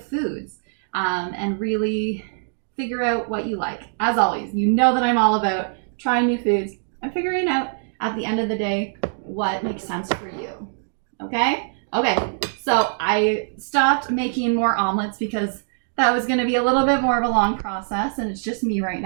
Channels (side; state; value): left; silent; digital silence